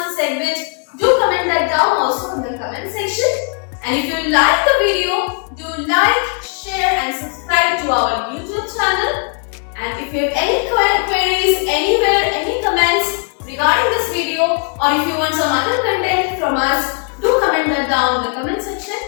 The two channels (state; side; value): quieter; right; 39.4 dB